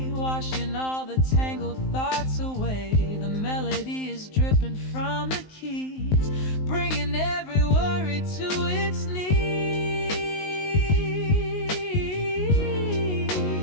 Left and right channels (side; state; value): right; late; 19 ms